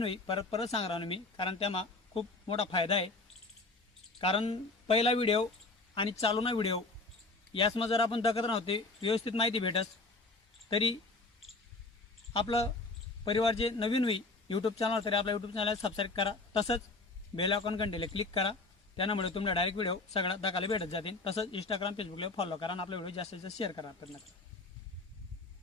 होई परत परत सांगणार मी, कारण त्यामा खूप मोठा फायदा आहे. कारण पहिला व्हिडिओ आणि चालूना व्हिडिओ यासमा जर आपण दखत नव्हते व्यवस्थित माहिती भेटस, तरी आपलं परिवार जे नवीन होई यूट्यूब चॅनल तरी आपल्या यूट्यूब चॅनल सबस्क्राईब करा. तसंच बेल आयकॉन घंटेला क्लिक करा. त्यामुळे तुम्हाला डायरेक्ट व्हिडिओ सगळ्यात दाखवायला भेटत जातील. तसंच इंस्टाग्राम फेसबुकला फॉलो करा आणि आपला व्हिडिओ जास्तीत जास्त शेअर करा.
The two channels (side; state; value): right; quieter; 3.3 dB